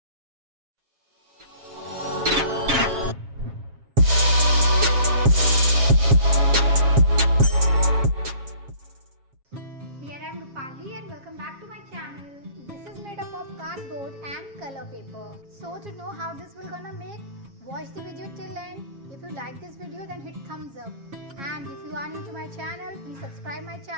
Here I am Rupali and welcome back to my channel. This is made up of cardboard and color paper. So to know how this will gonna make, watch the video till end. If you like this video then hit thumbs up. And if you are new to my channel, please subscribe my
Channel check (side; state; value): left; late; 7.3 ms